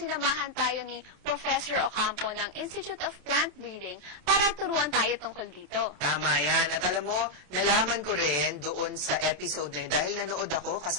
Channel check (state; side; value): late; left; 27 ms